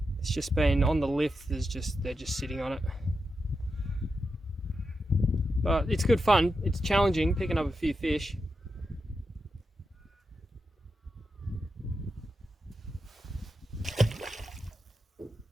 It's just been on the lift, they're just sitting on it. But it's good fun. It's challenging picking up a few fish.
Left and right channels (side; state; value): both; normal; correlation 0.88